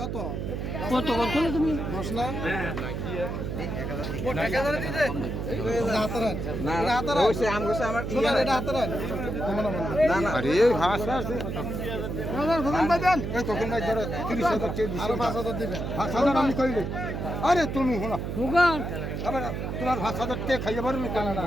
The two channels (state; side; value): noise; right; hum, 4 dB below the sound